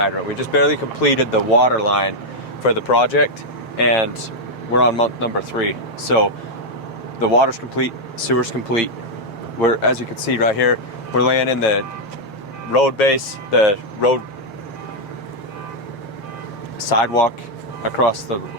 We just barely completed the water line for the project, and we're on month number 3. So the water's complete, sewer's complete. We're, as you can see right here, we're laying in the road base, the road sidewalk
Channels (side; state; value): right; late; 7.5 ms